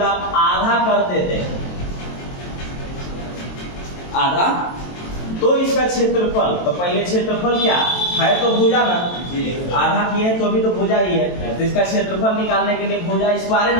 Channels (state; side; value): late; right; 23 ms